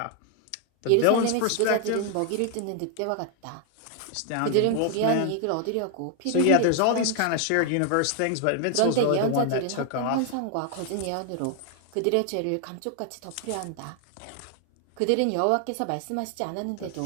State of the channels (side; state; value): both; different; correlation 0.00